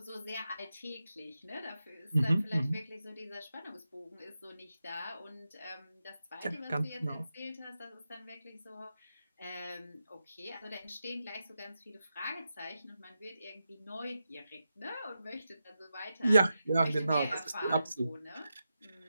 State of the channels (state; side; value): inverted; both; correlation -0.89